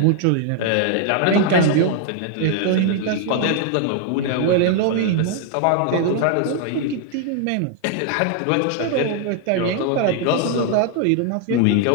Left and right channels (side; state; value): both; different; correlation 0.00